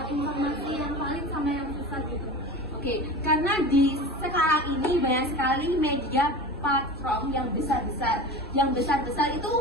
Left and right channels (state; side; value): normal; both; correlation 0.32